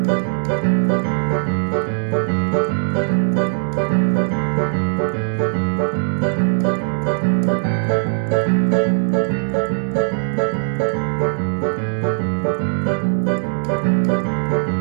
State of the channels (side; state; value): left; silent; 60 dB below the other